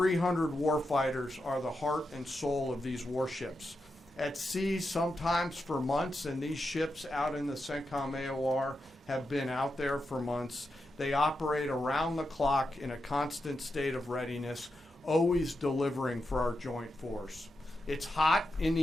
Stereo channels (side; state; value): both; normal; correlation 0.87